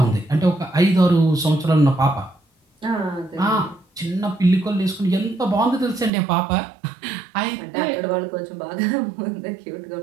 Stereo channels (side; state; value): left; drops out; at 6.1 s